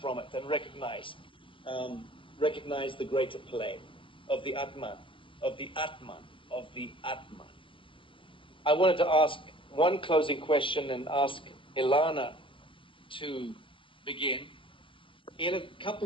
from it and recognize the greater play of the Atman, of the Atman, of the Atman. I wanted to ask one closing question and ask Ilana to begin. In a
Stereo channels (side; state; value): right; late; 0.25 ms